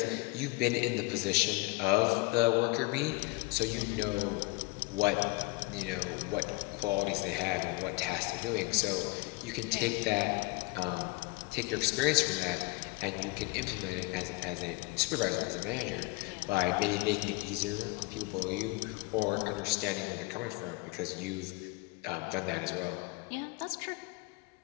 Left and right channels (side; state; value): right; quieter; 24.2 dB